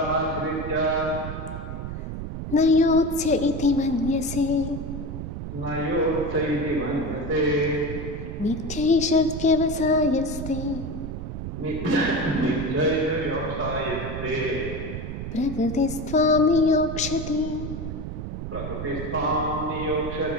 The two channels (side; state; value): right; noise; rumble, 6 dB below the sound